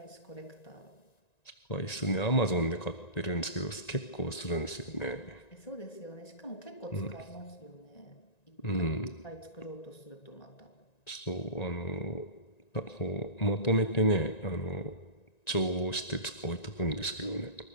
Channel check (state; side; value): late; right; 1.9 ms